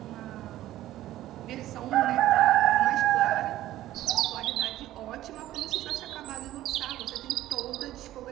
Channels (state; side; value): quieter; left; 14.4 dB